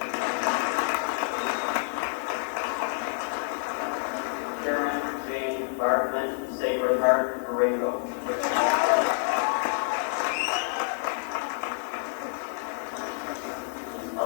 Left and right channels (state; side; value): silent; right; digital silence